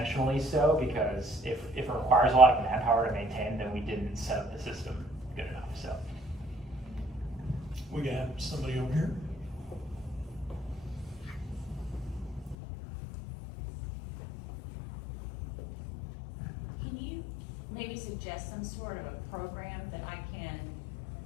so, because if it requires a lot of manpower to maintain, then we didn't set up the system good enough, so. We got somebody over here. Can you maybe suggest some sort of a program that I can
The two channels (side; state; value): right; drops out; at 12.6 s